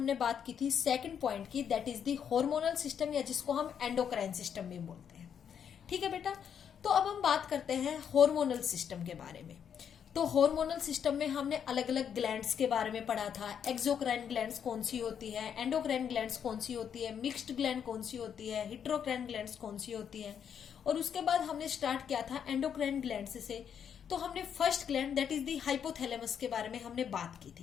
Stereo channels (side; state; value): right; quieter; 8.1 dB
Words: बात की थी सेकंड पॉइंट की, that is the hormonal system, या जिसको हम एंडोक्राइन सिस्टम भी बोलते हैं। ठीक है बेटा, तो अब हम बात करते हैं हार्मोनल सिस्टम के बारे में। तो हार्मोनल सिस्टम में हमने अलग अलग ग्लैंड्स के बारे में पढ़ा था। एक्सोक्राइन ग्लैंड्स कौन सी होती है, एंडोक्राइन ग्लैंड्स कौन सी होती है, मिक्स्ड ग्लैंड कौन सी होती है, हेटेरोक्राइन ग्लैंड्स कौन सी होती है। और उसके बाद हमने स्टार्ट किया था एंडोक्राइन ग्लैंड्स से। तो हमने first gland that is the hypothalamus के बारे में हमने बात की